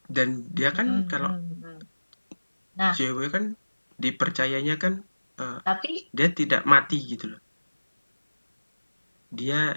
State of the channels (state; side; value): inverted; both; correlation -1.00